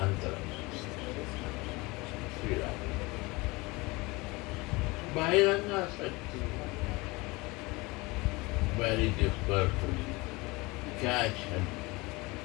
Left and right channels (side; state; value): right; quieter; 23.8 dB